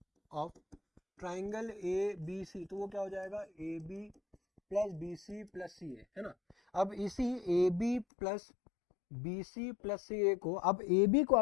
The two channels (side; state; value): right; drops out; at 8.1 s